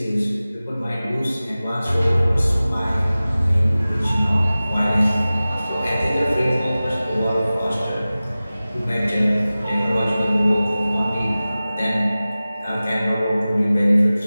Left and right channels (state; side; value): inverted; both; correlation -0.97